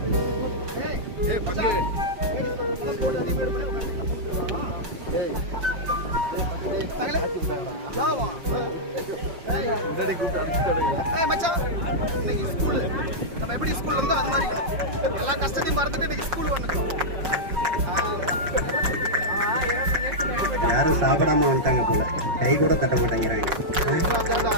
யாரும் சாப்பிடாம வந்துட்டாங்க போல, கை கூட தட்ட மாட்டேங்கிறாங்க.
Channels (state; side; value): late; left; 5.3 ms